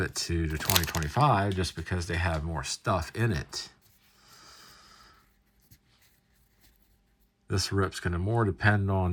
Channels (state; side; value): identical; both; correlation 1.00